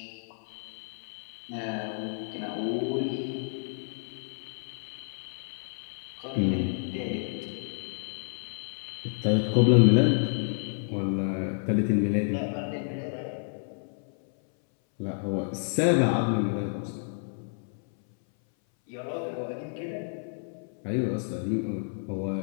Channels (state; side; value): silent; right; 58 dB below the other